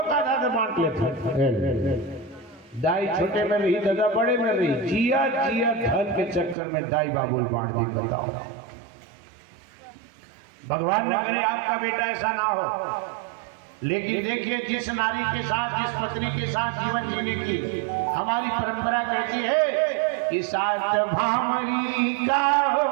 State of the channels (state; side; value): drops out; left; at 6.6 s